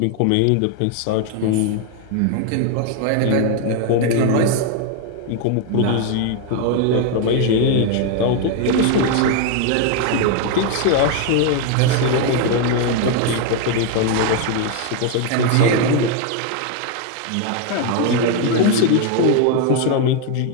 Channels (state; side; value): different; both; correlation 0.01